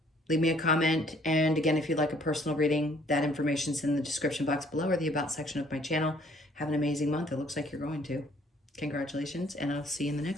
Leave me a comment. And again, if you'd like a personal reading, that information's in the description box below or the About section of my channel. Have an amazing month. It looks like you're going to. Congratulations, and I'll see you in the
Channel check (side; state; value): both; normal; correlation 0.61